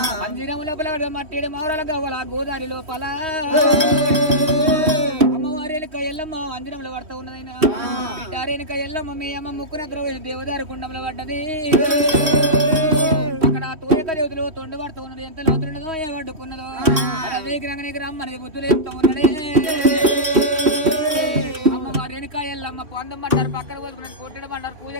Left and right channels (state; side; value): late; left; 3.0 ms